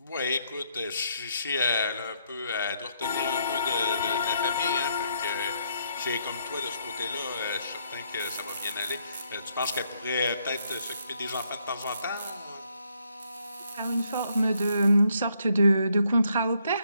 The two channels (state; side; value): inverted; both; correlation -0.73